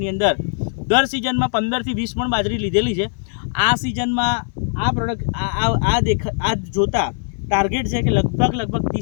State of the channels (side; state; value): right; silent; digital silence